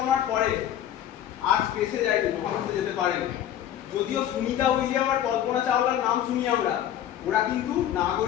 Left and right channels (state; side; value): quieter; right; 11.1 dB